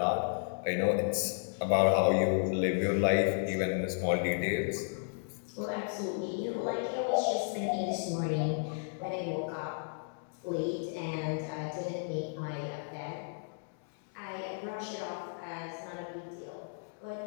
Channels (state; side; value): silent; right; digital silence